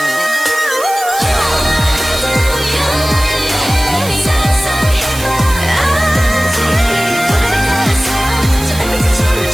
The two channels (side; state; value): right; noise; hiss, 11 dB below the sound